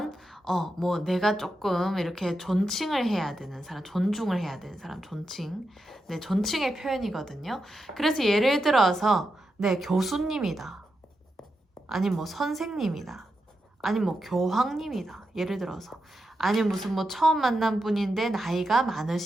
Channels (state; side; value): normal; both; correlation 0.87